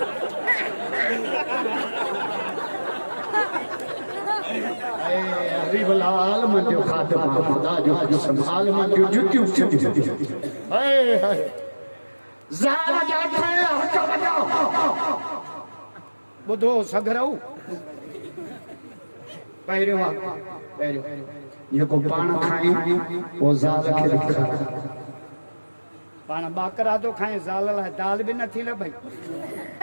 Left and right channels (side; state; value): both; inverted; correlation -1.00